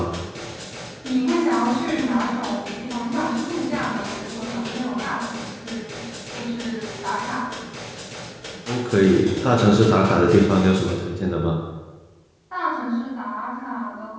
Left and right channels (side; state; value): both; identical; correlation 1.00